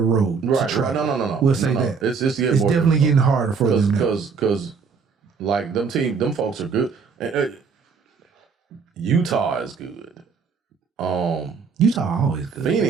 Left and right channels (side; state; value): left; quieter; 5.5 dB